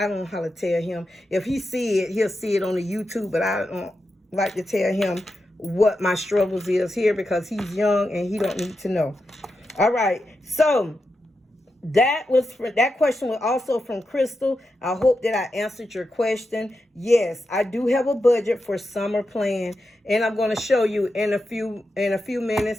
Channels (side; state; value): both; normal; correlation 0.88